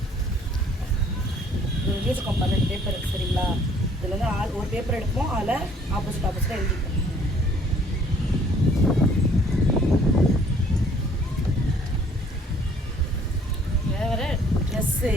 எழுதிருக்கோம் 12 பேப்பர், சரிங்களா? இதில் வந்து ஒரு பேப்பர் எடுப்போம், அதில் ஆப்போசிட்டாக எழுதிப்போம்.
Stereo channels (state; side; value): normal; both; correlation 0.59